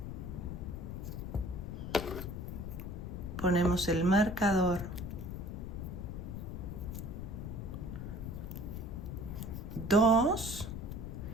Ponemos el marcador. 2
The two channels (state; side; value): noise; left; rumble, 6 dB below the sound